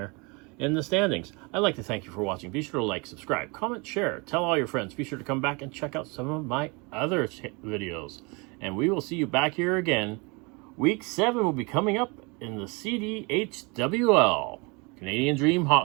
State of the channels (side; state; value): left; quieter; 29.2 dB